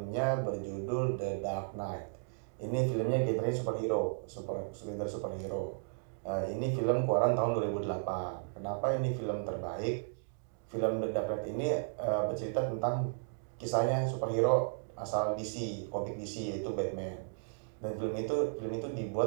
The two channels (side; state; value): left; silent; digital silence